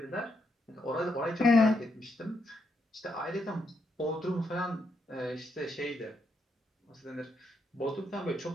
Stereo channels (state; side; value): normal; both; correlation 0.79